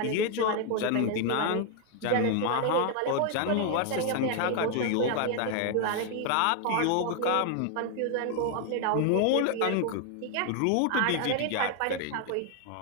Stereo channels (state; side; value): different; both; correlation 0.00